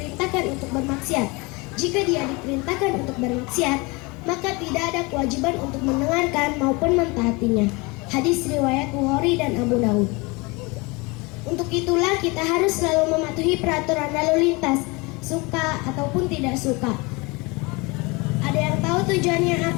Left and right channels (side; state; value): right; quieter; 26.5 dB